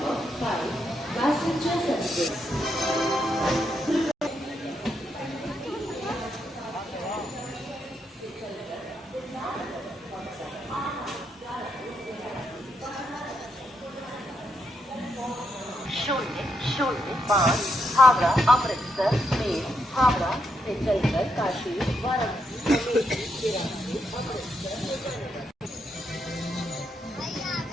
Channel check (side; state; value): both; normal; correlation 0.80